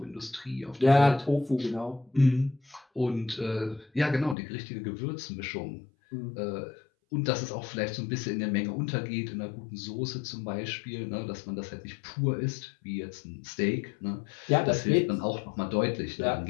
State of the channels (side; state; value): right; drops out; at 4.4 s